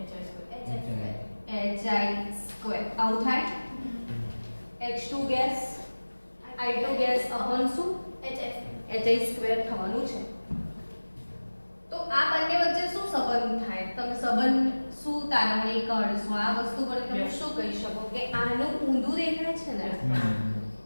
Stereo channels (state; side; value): inverted; both; correlation -1.00